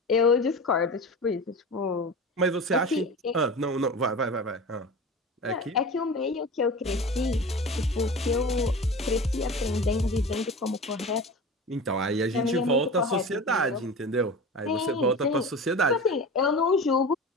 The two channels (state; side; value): normal; both; correlation 0.32